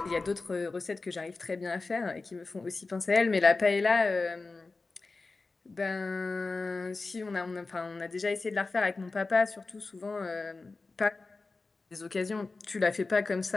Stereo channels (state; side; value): quieter; right; 3.7 dB